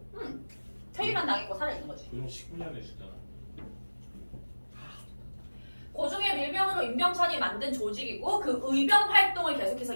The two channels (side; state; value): both; inverted; correlation -1.00